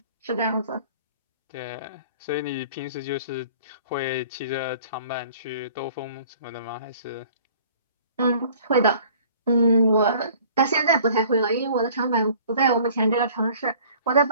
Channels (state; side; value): inverted; both; correlation -0.51